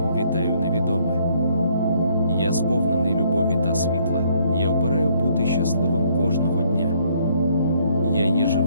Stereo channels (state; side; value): inverted; both; correlation -0.66